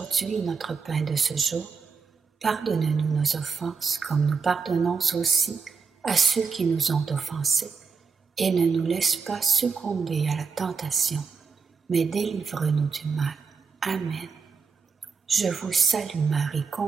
notre pain de ce jour. Pardonne-nous nos offenses, comme nous pardonnons aussi à ceux qui nous ont offensés. Et ne nous laisse pas succomber à la tentation, mais délivre-nous du mal. Amen. Je vous salue Marie,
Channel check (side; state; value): left; quieter; 5.3 dB